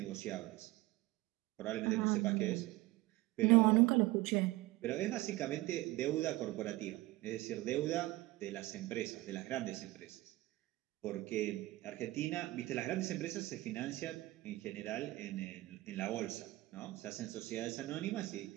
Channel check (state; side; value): quieter; left; 19.0 dB